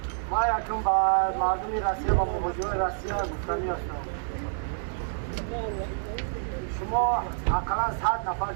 ما یکم به مردم روسیه و مهاجران روسیه گفتنی هستم. شما اقلا 100 نفر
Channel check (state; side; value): silent; left; digital silence